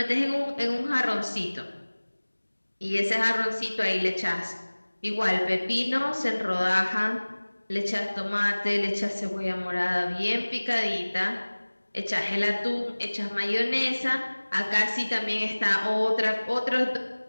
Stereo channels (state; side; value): inverted; both; correlation -1.00